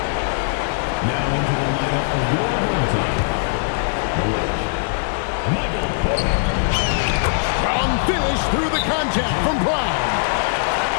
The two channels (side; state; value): right; silent; digital silence